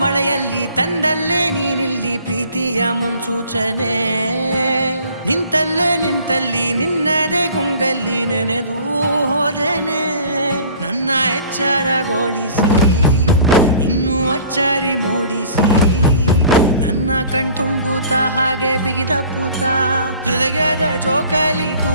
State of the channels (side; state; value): both; inverted; correlation -0.50